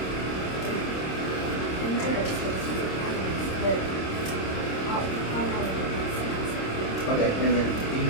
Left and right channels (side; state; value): right; late; 26 ms